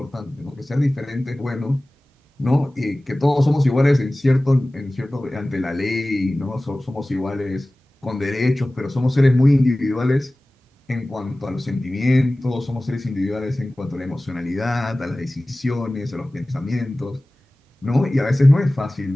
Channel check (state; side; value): normal; both; correlation 0.98